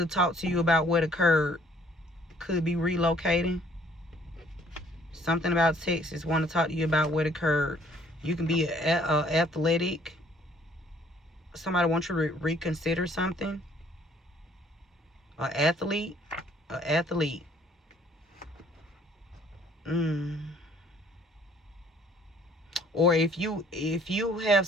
talk to you about what occurred. Could be relocating. Something about Texas. Want to talk to you about what occurred. You can be athletic. Somebody wants you to reconsider something. An athlete. An athlete. Or if you have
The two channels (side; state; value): both; normal; correlation 0.60